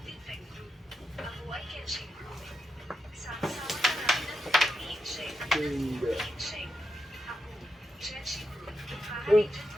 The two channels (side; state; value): both; normal; correlation 0.85